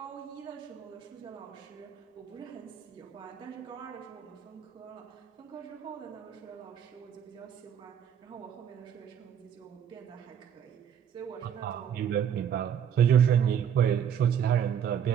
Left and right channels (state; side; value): quieter; left; 8.6 dB